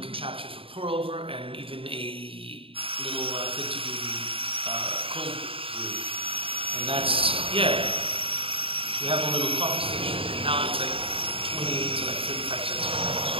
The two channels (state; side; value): late; left; 0.27 ms